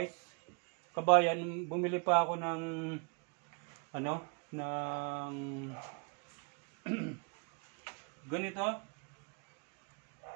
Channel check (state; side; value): quieter; left; 34.3 dB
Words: kabayan, bumili pa ako ng ng ganito.